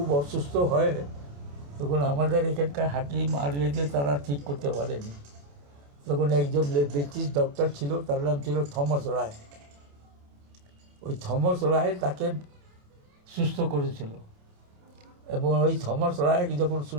অসুস্থ হয় তখন আমাদের এখানকার হাকিম আর যে তারা ঠিক করতে পারেনি, তখন একজন ব্রিটিশ ডক্টর ছিল, তার নাম ছিল থমাস রায়। ওই থমাস রায় তাকে সুস্থ করেছিল। এবং ওই থমাস রায় যখন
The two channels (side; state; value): left; late; 28 ms